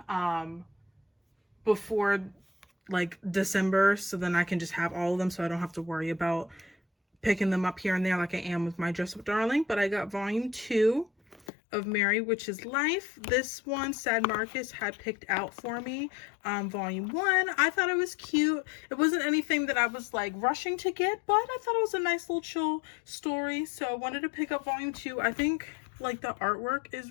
before like December, so then I can just have all of them, so I don't have to worry about picking them up here and there like I am with my Dress Up Darling. But I got volume 2 of Mary, Which Is Life. This one, Sad Marcus had picked out for me. Volume 1, I thought it was cute. It wasn't anything that I was like rushing to get, but I thought it was a nice little chill story, so I wanted to pick up volume 2. I think like the artwork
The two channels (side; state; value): right; drops out; at 11.5 s